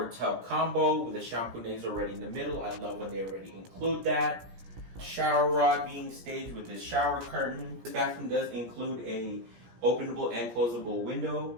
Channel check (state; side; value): late; left; 17 ms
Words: tub combo with the shampoo already in the middle. I love when they already include that. Shower rod being staged with this shower curtain. This bathroom does include a openable and closable